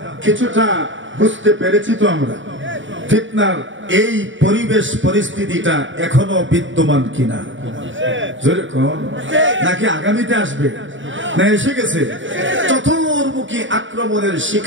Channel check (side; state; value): left; late; 0.56 ms